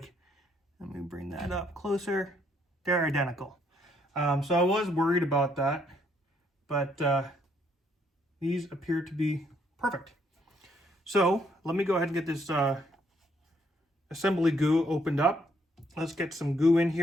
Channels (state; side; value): normal; both; correlation 0.70